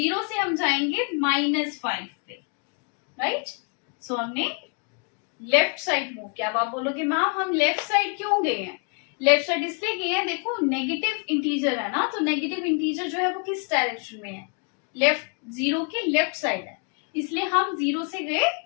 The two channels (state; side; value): quieter; right; 36.9 dB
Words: से हम जाएंगे -5 पे, राइट. सो हमने लेफ्ट साइड मूव किया. अब आप बोलोगे मैम हम लेफ्ट साइड क्यों गए हैं? लेफ्ट साइड इसलिए गए हैं, देखो नेगेटिव इंटीजर है ना. तो नेगेटिव इंटीजर जो है वो किस डायरेक्शन में है? लेफ्ट. 0 की लेफ्ट साइड है, इसलिए हम 0 से गए